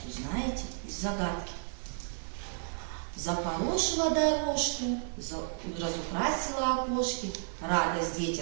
узнаете из загадки. Запорошила дорожку, разукрасила окошки, радость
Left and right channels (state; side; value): silent; left; 56 dB below the other